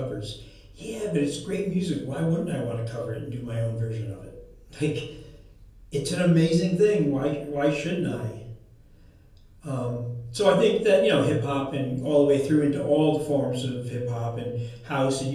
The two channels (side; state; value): both; identical; correlation 1.00